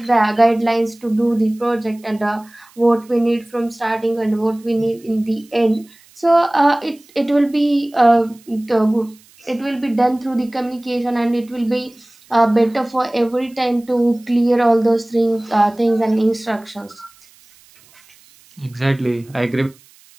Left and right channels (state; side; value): noise; right; hiss, 28 dB below the sound